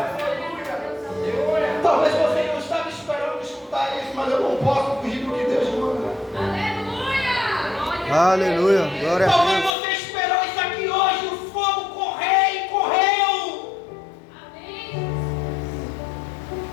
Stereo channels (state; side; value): drops out; right; at 9.7 s